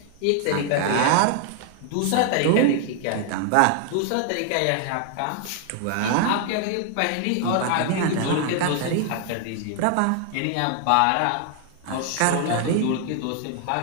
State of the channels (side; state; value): both; different; correlation 0.00